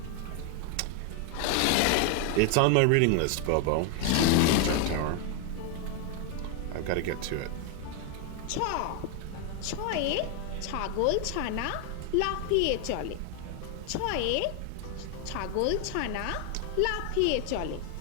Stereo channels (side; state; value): both; different; correlation 0.01